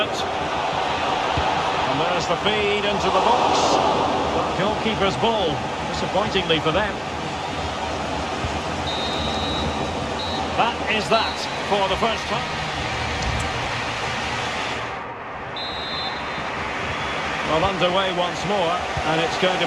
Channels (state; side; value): identical; both; correlation 1.00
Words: And there's the feed into the box. Goalkeeper's ball, disappointingly for them. That is that for the first time. Well, underway once more, and it's going